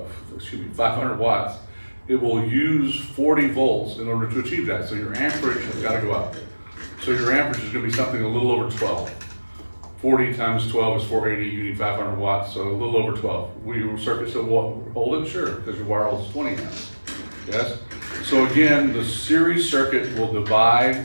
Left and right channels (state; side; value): inverted; both; correlation -1.00